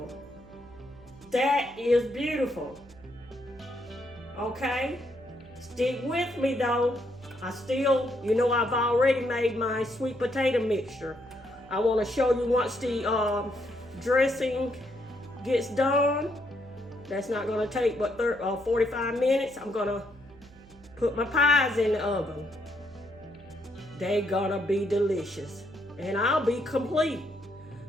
That is beautiful. Okay, stick with me though. You know, I've already made my sweet potato mixture. I want to show you once the dressing gets done. That's not gonna take but 45 minutes. I'm gonna put my pies in the oven. They're gonna be delicious. And I'll be complete.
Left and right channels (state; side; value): noise; right; hum, 23 dB below the sound